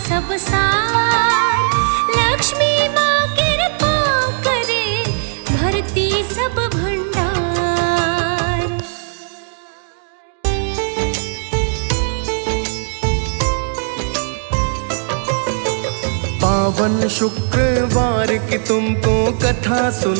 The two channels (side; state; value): left; silent; digital silence